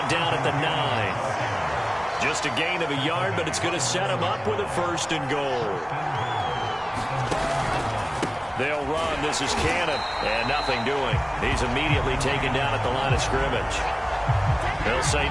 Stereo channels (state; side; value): identical; both; correlation 1.00